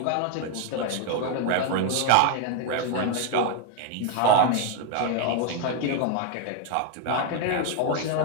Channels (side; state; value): both; different; correlation 0.01